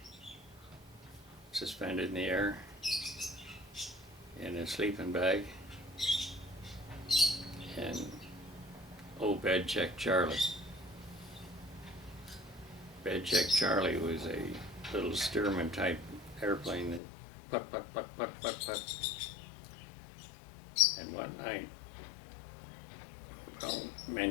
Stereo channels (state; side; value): drops out; right; at 17.0 s